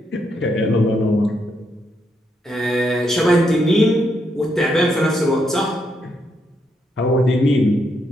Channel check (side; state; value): both; normal; correlation 0.78